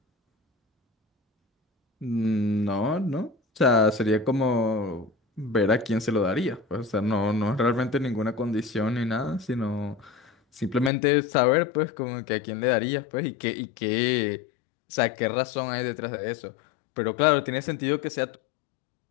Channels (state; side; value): drops out; right; at 10.9 s